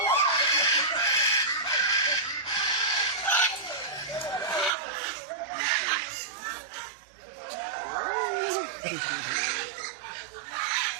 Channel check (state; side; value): drops out; left; at 4.7 s